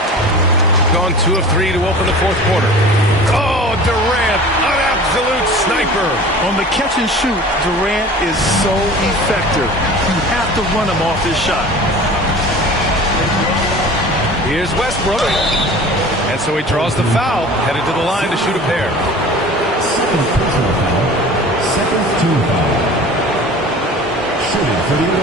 Gone 2 of 3 to open the fourth quarter. Oh, Durant, an absolute sniper. On the catch and shoot, Durant is so effective. You have to run him off his shot. Here's Westbrook. And so he draws the foul, headed to the line to shoot a pair. Second personal foul. Second team foul. Shooting for the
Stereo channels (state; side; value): normal; both; correlation 0.40